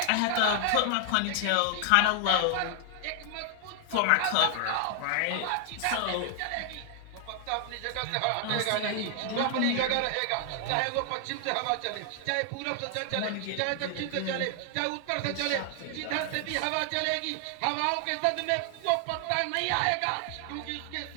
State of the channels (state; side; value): different; both; correlation 0.00